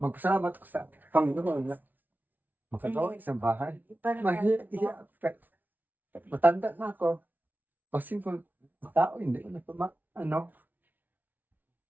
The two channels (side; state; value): left; late; 0.083 ms